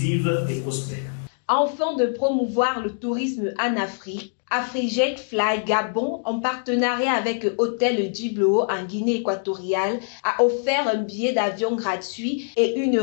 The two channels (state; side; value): silent; right; digital silence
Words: et prospère. Afin de promouvoir le tourisme en Afrique, Afrijet Fly Gabon, en partenariat avec Hôtel Djiblo en Guinée équatoriale, a offert un billet d'avion gratuit et une